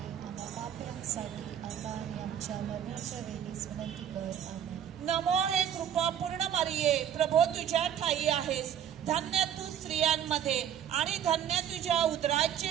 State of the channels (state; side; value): quieter; left; 9.5 dB